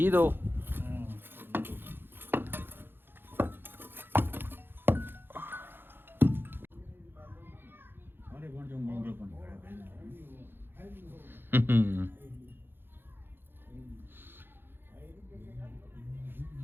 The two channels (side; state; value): left; late; 0.10 ms